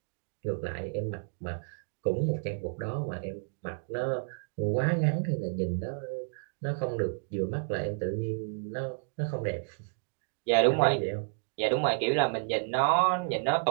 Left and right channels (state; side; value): silent; left; digital silence